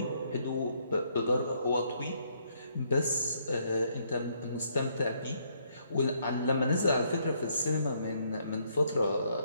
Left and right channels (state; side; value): inverted; both; correlation -0.71